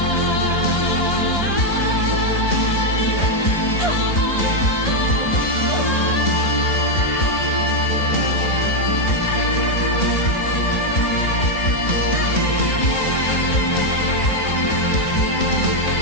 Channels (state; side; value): late; right; 3.0 ms